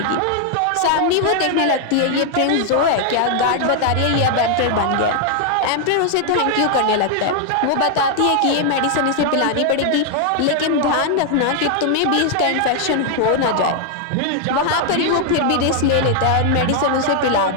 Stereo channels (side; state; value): both; different; correlation 0.00